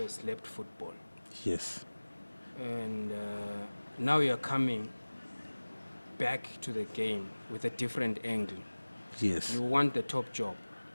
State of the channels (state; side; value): inverted; both; correlation -1.00